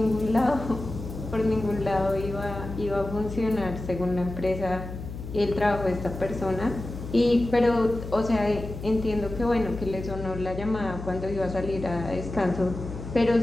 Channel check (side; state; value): left; noise; hum, 9 dB below the sound